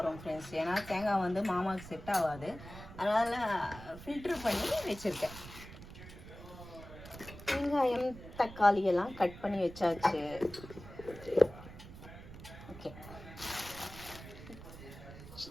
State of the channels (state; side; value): noise; right; rumble, 15 dB below the sound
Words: ஃப்ரெண்ட்ஸ். ஏன்னா தேங்காய் வந்து மாமாவுக்கு செட் ஆகாது, அதனால் ஃபில்ட்ரு பண்ணி வச்சுருக்கேன். வெங்காயம் தக்காளி எல்லாம் கட் பண்ணி வச்சாச்சு. ஓகே,